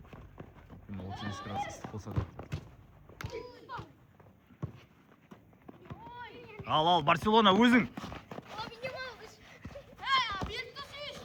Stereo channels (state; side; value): identical; both; correlation 1.00